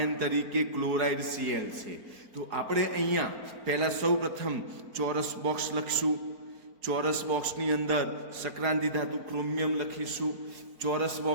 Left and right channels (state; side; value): late; left; 4.4 ms